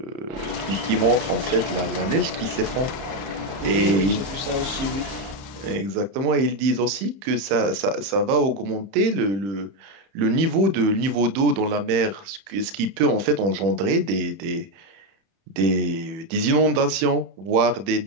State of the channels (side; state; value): left; late; 31 ms